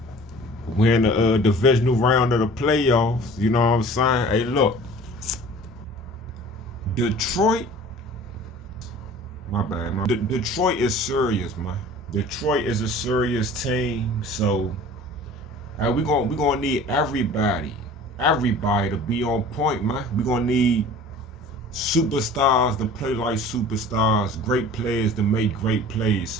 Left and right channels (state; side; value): normal; both; correlation 0.44